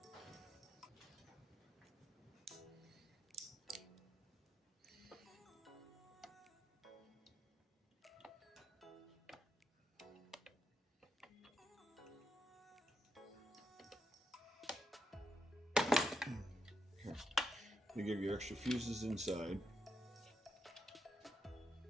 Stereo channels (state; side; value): normal; both; correlation 0.83